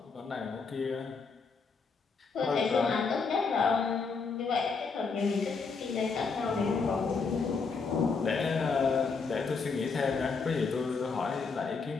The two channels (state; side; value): quieter; right; 4.8 dB